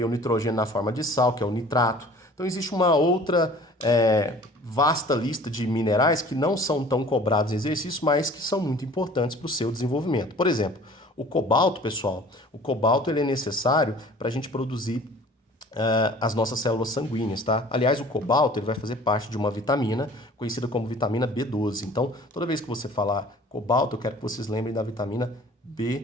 o nitrogênio na forma de sal, que é o nitrato. Então existe uma outra vasta lista de minerais que não são tão cobrados em exercício, mas que são muito importantes para o seu desenvolvimento. Por exemplo, o cobalto, pessoal, o cobalto ele é necessário para a gente produzir as nossas células sanguíneas, tá? Aliás, o cobalto ele vai fazer parte de uma vitamina conhecida como vitamina B12. Então, toda vez que você falar cobalto, eu quero que vocês lembrem da vitamina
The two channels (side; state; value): both; normal; correlation 0.48